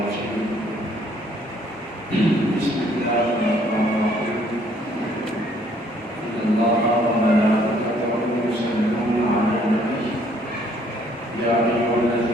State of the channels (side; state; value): both; normal; correlation 0.63